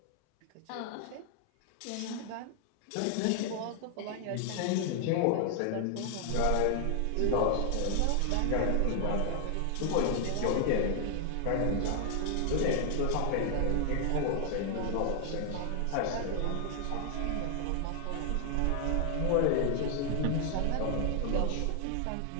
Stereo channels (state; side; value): different; both; correlation 0.00